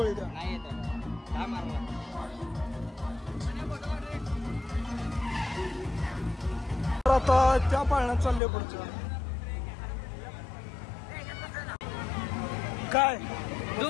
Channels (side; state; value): right; drops out; at 8.4 s